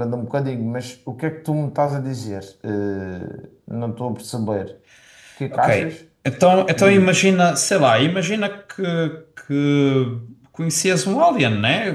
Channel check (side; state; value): both; identical; correlation 1.00